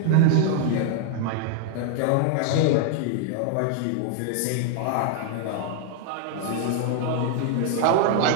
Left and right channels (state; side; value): different; both; correlation 0.00